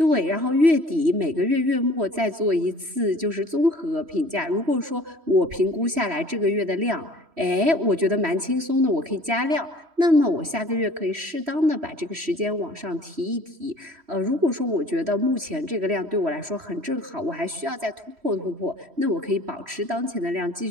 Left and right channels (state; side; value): late; left; 3.1 ms